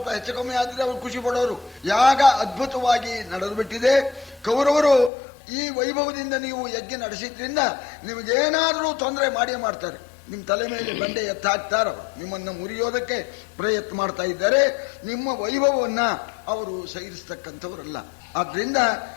ಹೆಚ್ಚು ಕಮ್ಮಿ ಆದ್ರೆ ಅವರು ಖುಷಿ ಪಡೋರು. ಯಾಗ ಅದ್ಭುತವಾಗಿ ನಡೆದು ಬಿಟ್ಟಿದೆ. ಕೌರವರು ಈ ವೈಭವದಿಂದ ನೀವು ಯಜ್ಞ ನಡೆಸಿದ್ರಿಂದ ನಿಮಗೇನಾದರೂ ತೊಂದರೆ ಮಾಡೇ ಮಾಡ್ತಾರೆ. ನಿಮ್ಮ ತಲೆ ಮೇಲೆ ಬಂಡೆ ಎತ್ತಾಕ್ತಾರೆ. ಅವರು ನಿಮ್ಮನ್ನು ಮುರಿಯೋದಕ್ಕೆ ಪ್ರಯತ್ನ ಮಾಡ್ತಾ ಇದ್ದಾರೆ. ನಿಮ್ಮ ವೈಭವವನ್ನ ಅವರು ಸಹಿಸ್ತಕ್ಕಂಥವರಲ್ಲ. ಆದ್ರಿಂದ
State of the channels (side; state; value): right; drops out; at 5.1 s